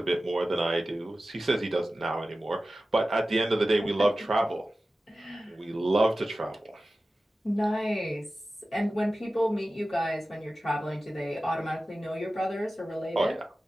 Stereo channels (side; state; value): both; normal; correlation 0.95